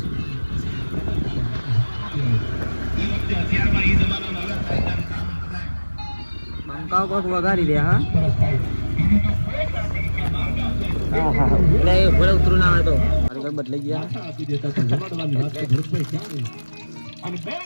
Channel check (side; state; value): both; inverted; correlation -1.00